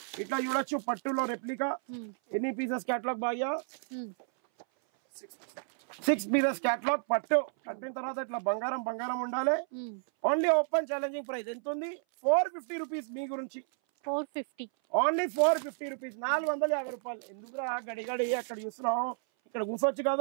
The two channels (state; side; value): silent; left; 57 dB below the other